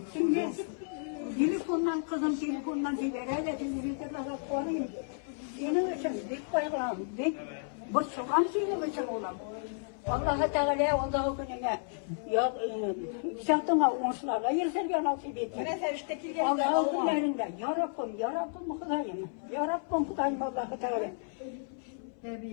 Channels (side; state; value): right; silent; 56 dB below the other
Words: Şimdi telefondan kızım telefondan diyor. Öyle telefonda daha koyayım. Benim için bir bayram. Bu sokan benim için olam. Allah Teala onda gününe ya zaten olmuşlarla yırtırken nasip etti. Ne sevişte kilgen. Allah günlerinde ya Rabbim Hudayım. Ya Rabbim Hudayım Allah Teala.